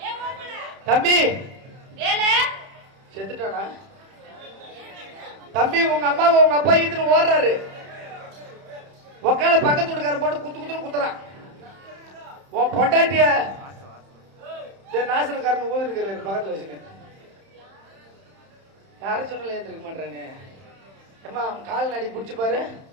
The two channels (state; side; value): late; left; 31 ms